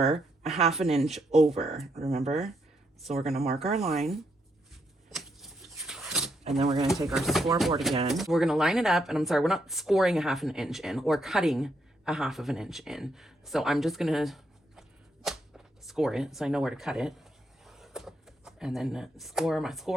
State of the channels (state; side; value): normal; both; correlation 0.78